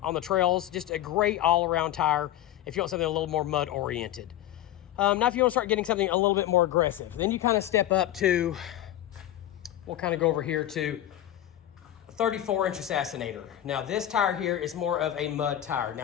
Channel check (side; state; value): right; quieter; 12.8 dB